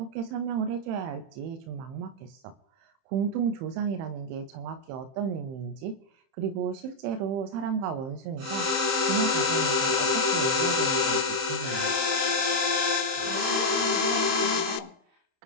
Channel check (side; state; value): left; late; 30 ms